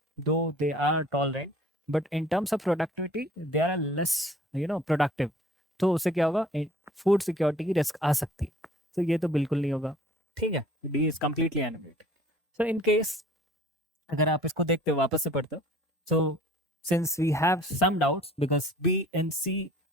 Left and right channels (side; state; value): both; normal; correlation 0.51